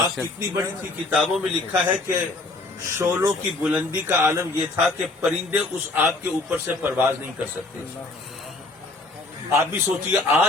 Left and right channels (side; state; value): right; quieter; 3.1 dB